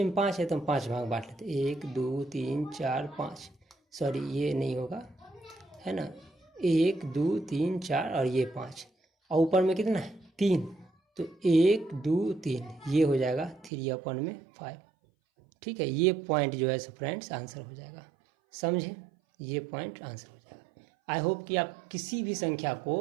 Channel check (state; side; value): drops out; left; at 13.7 s